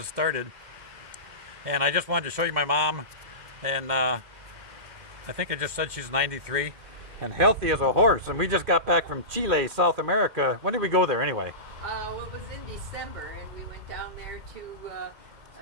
started. And I just wanted to show you my mom. And I think I just said she's 93 and healthy as a horse. And we just got back from Chile, South America. When did we go there anyway? Well, it was in December, and we went down there to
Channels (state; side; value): late; left; 2.1 ms